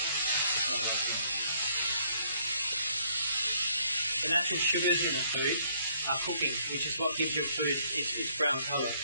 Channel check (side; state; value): both; inverted; correlation -0.66